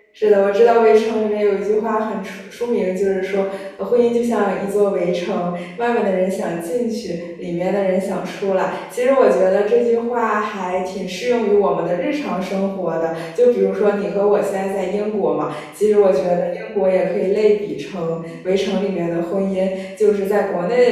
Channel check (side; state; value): both; identical; correlation 1.00